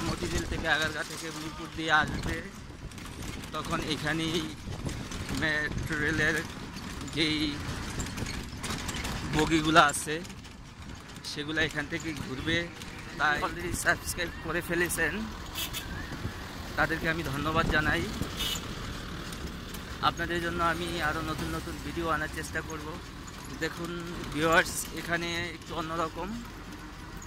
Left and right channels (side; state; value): both; identical; correlation 1.00